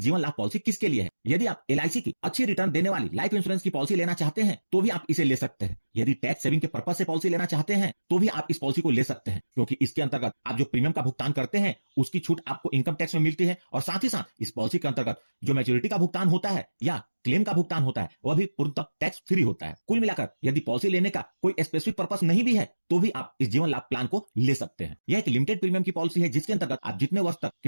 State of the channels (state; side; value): inverted; both; correlation -1.00